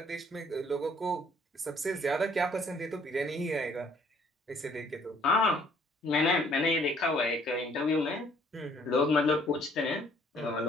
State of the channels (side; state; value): both; normal; correlation 0.61